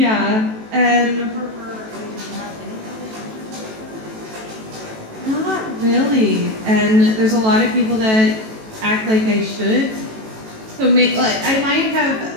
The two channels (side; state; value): left; late; 18 ms